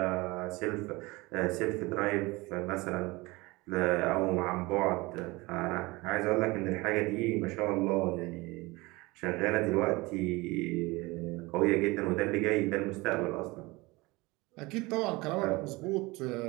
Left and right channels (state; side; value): quieter; left; 22.8 dB